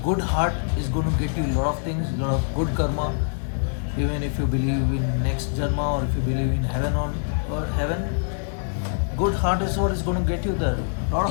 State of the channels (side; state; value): right; silent; digital silence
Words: good heart is gonna get you a lot of things, a lot of good karma. Even if you believe in next janma or if you believe in heaven or heaven, good heart is what is gonna get you there. A lot